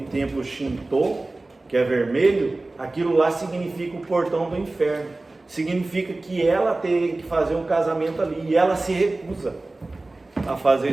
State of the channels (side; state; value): left; quieter; 3.0 dB